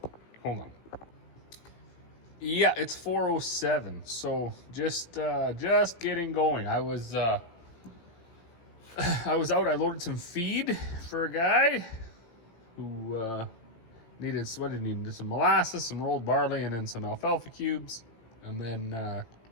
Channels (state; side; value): late; right; 18 ms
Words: Hold on. Yeah, it's 4:07. So just getting going. I was out. I loaded some feed for a guy who needed, what did he need? Some molasses, some rolled barley, and then some alfalfa cubes. And then,